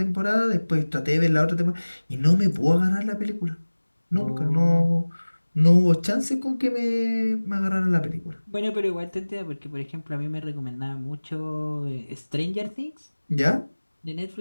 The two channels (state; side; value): inverted; both; correlation -1.00